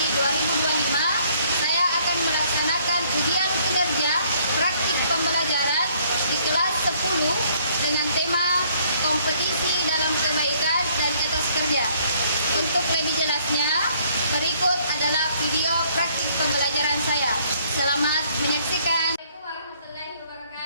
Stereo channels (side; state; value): both; inverted; correlation -0.63